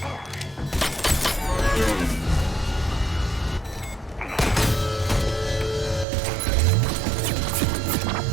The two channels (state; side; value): drops out; left; at 6.1 s